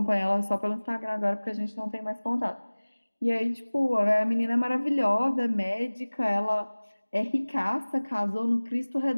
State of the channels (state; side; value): inverted; both; correlation -1.00